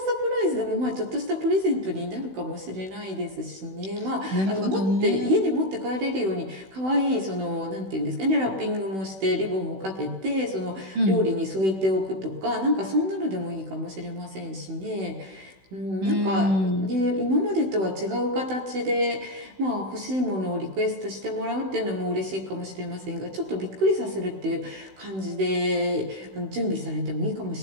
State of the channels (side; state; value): left; late; 16 ms